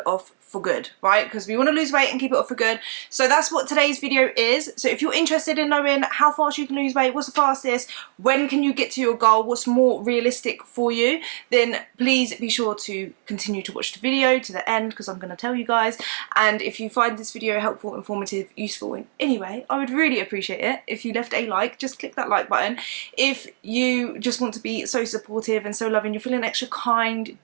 off for good, right? Because we want to lose weight and keep it off for good. So that's what today's video is. So if you're interested in knowing how fast you can lose weight, what's the fastest, when can you get to your goal, what's more realistic for you, then please be sure to continue to watch the video to the end, because I'm going to tell you guys. And if you find this video helpful, informative, useful in any way, I would really appreciate it if you left a like. Just click that like button. If you just want to be so supportive and so loving, you're feeling extra kind,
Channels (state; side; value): silent; left; digital silence